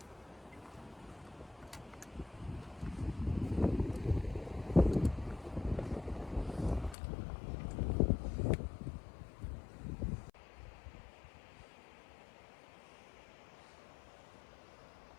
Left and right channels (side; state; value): right; drops out; at 7.0 s